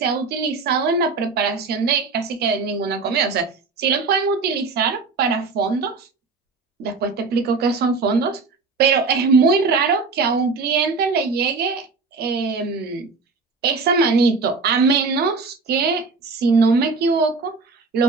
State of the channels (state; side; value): quieter; left; 4.3 dB